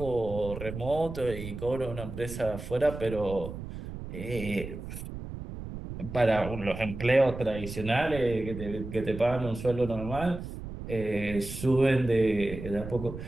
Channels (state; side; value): noise; right; rumble, 9 dB below the sound